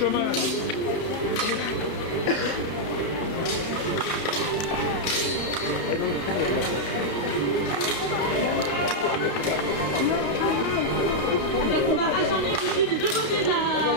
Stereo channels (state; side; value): late; right; 32 ms